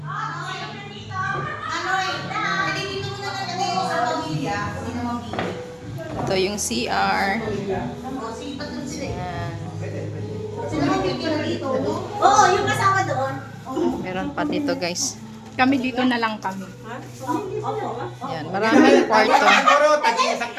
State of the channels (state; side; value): identical; both; correlation 1.00